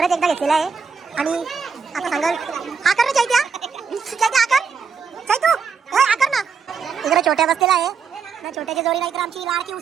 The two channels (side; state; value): left; quieter; 5.8 dB